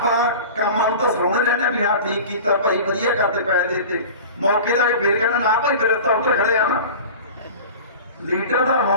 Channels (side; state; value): both; inverted; correlation -0.36